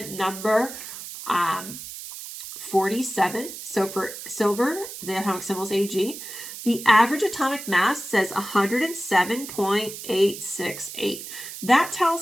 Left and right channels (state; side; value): noise; right; hiss, 11 dB below the sound